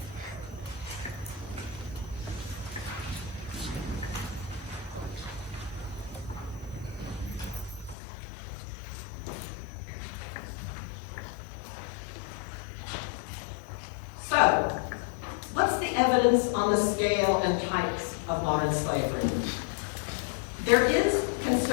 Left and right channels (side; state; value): right; drops out; at 8.0 s